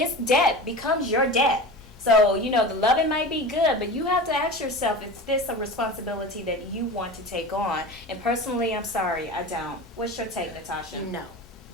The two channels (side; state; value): both; normal; correlation 0.31